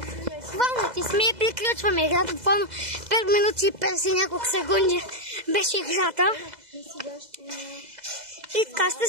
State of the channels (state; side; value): late; left; 2.0 ms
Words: Буквално ти сме и приключваме играта. Буквално 5 минути и 50 няколко секунди беше играта. И така ще